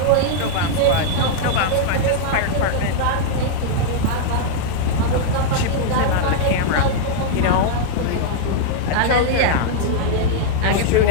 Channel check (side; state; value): both; different; correlation -0.01